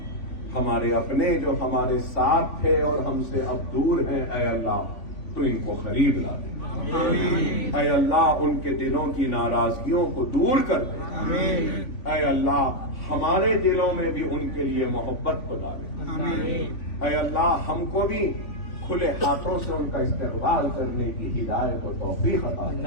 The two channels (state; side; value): late; right; 3.5 ms